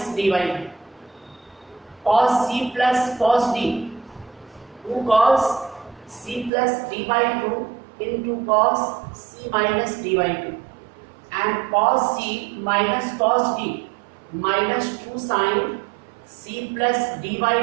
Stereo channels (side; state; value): left; drops out; at 6.5 s